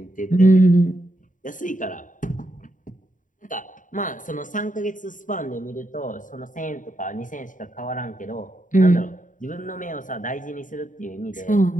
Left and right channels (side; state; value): right; late; 0.38 ms